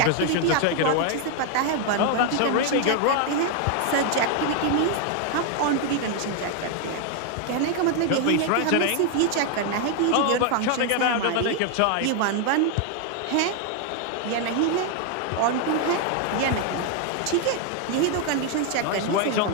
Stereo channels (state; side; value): different; both; correlation 0.00